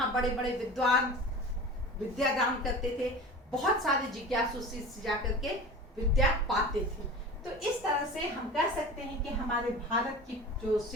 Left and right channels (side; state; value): both; normal; correlation 0.35